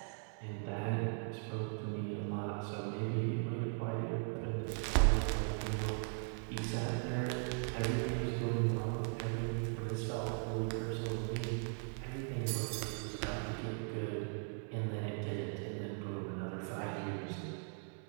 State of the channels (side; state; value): left; silent; 52 dB below the other